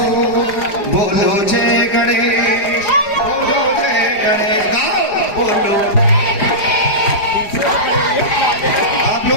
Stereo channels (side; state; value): right; late; 4.9 ms